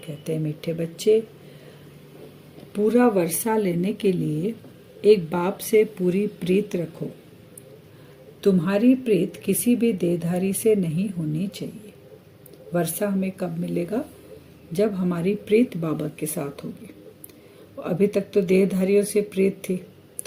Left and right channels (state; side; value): identical; both; correlation 1.00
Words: हैं, मीठे बच्चे, पूरा वर्षा लेने के लिए एक बाप से पूरी प्रीत रखो। तुम्हारी प्रीत किसी भी देहधारी से नहीं होनी चाहिए। वर्षा हमें कब मिलेगा? जब हमारी प्रीत बाबा के साथ होगी। अभी तक तो देहधारियों से प्रीत थी,